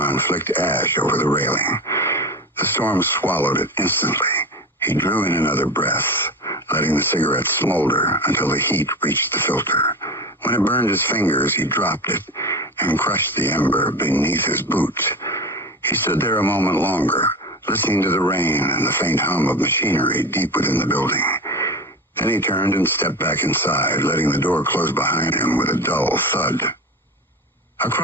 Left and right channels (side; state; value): both; normal; correlation 0.28